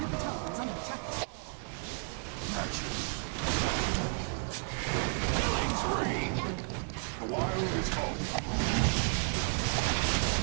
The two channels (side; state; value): left; quieter; 35.6 dB